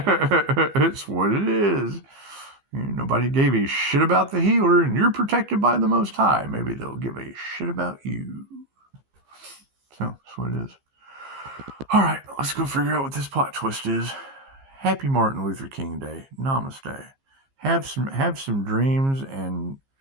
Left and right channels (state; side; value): late; left; 15 ms